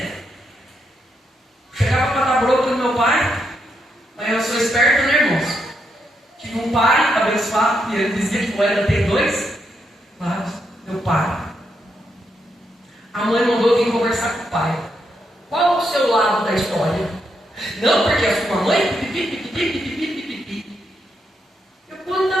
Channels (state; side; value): normal; both; correlation 0.80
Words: Chegava para dar bronca no meu pai. Mas eu sou esperto, né, irmãos? Tive um pai abençoado, e ele dizia que era ter 2 lados. Meu pai. A mãe mandou vir conversar com o pai. Qual o seu lado da história? Não, porque a sua mãe. Eu